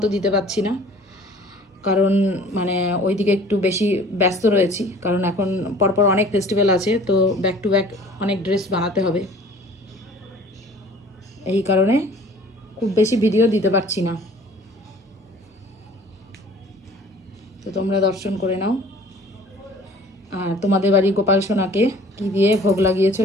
দিতে পারছি না, কারণ মানে ওইদিকে একটু বেশি ব্যস্ত রয়েছি, কারণ এখন পরপর অনেক ফেস্টিভ্যাল আছে, তো ব্যাক টু ব্যাক অনেক ড্রেস বানাতে হবে। এই কারণে খুব বেশি ভিডিও দিতে পারছি না। তো তোমরা দর্শন করে নাও। আর তোমাদের বাড়ি গোপাল সোনাকে কী দিয়ে ভোগ লাগিয়েছো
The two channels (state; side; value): normal; both; correlation 0.50